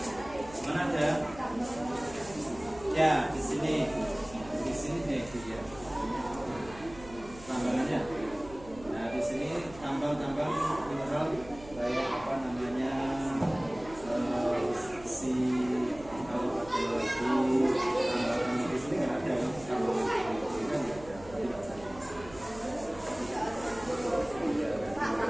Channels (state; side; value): noise; right; hum, 18 dB below the sound